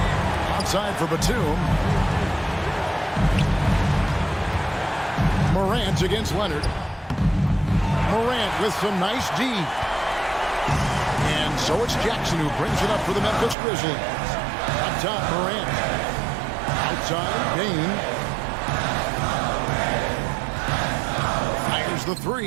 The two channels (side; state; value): left; drops out; at 13.6 s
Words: Outside for Batum. Morant against Leonard. Morant with some nice D. And so it's Jackson who brings it up for the Memphis Grizzlies. Up top, Morant. Outside, Payne. Fires the